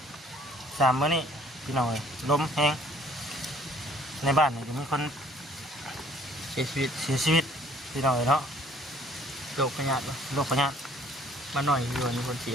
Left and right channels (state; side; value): normal; both; correlation 0.58